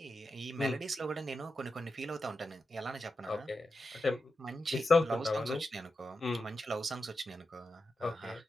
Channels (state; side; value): normal; both; correlation 0.89